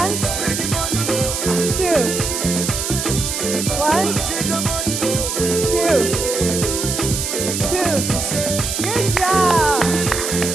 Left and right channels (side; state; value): right; noise; hiss, 3 dB below the sound